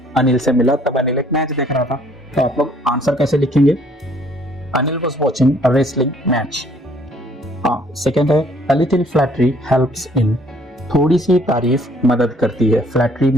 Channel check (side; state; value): both; normal; correlation 0.61